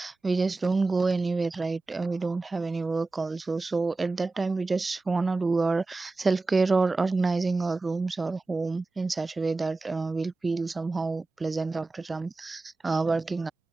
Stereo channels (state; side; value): quieter; left; 3.5 dB